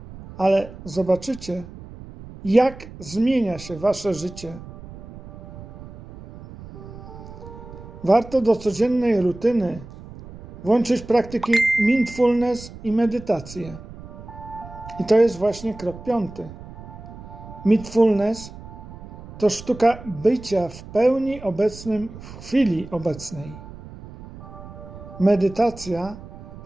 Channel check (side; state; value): right; noise; rumble, 15 dB below the sound